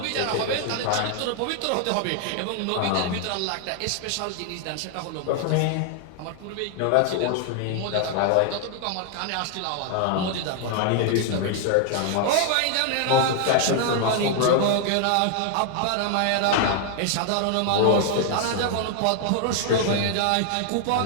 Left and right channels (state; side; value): different; both; correlation 0.00